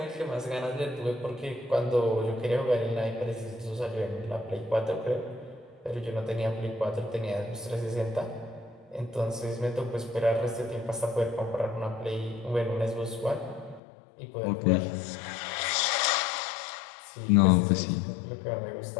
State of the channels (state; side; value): drops out; right; at 13.8 s